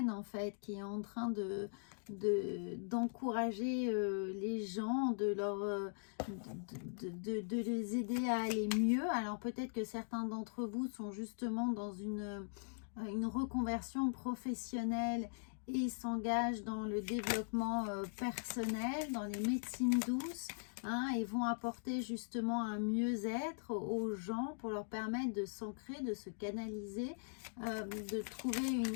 en fait, qui est en train d'encourager les gens, de les aider à aller mieux. Alors peut-être que certains d'entre vous sont justement dans une reconversion professionnelle et s'engagent dans le développement personnel, dans les médecines douces, hein, et vont apporter justement un mieux-être aux gens pour leur permettre de s'ancrer, de se canaliser, de trouver une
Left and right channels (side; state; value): right; silent; digital silence